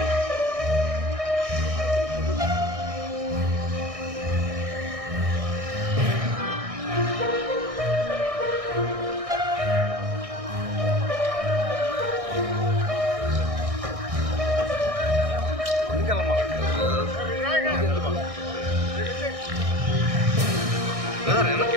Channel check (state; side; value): late; left; 1.6 ms